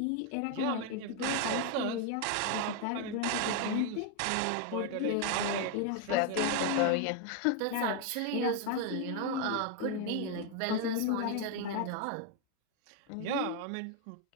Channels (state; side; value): different; both; correlation 0.01